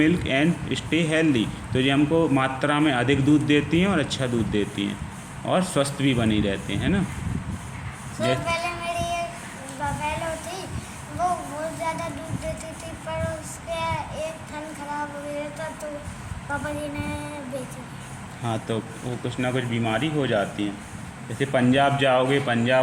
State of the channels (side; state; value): both; identical; correlation 1.00